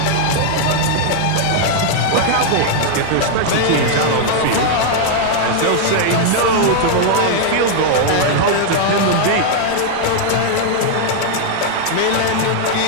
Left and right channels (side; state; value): both; different; correlation 0.00